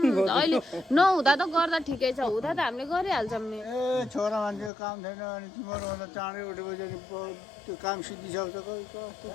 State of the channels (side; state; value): right; drops out; at 4.7 s